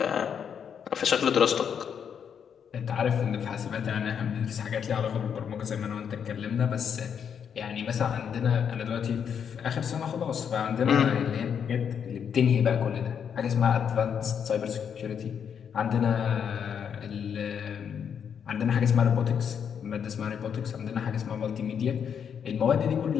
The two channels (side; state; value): right; quieter; 7.6 dB